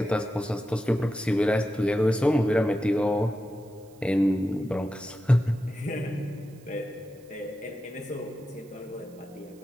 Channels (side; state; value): right; noise; hiss, 29 dB below the sound